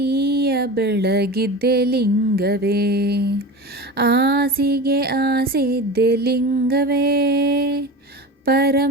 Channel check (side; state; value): both; normal; correlation 0.30